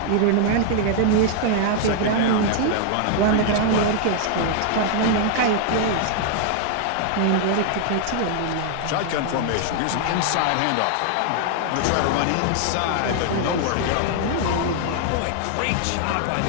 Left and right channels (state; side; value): different; both; correlation 0.00